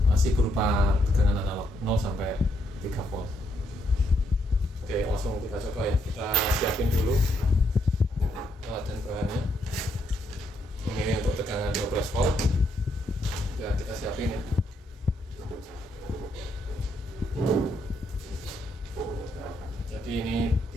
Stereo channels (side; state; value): both; normal; correlation 0.75